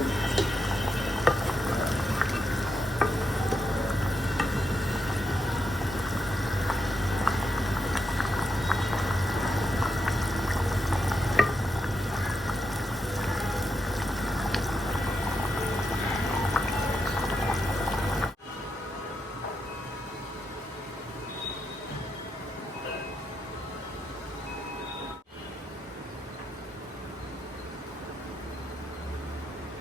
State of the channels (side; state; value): both; normal; correlation 0.83